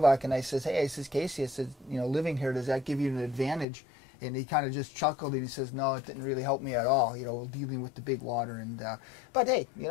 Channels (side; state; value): right; drops out; at 3.7 s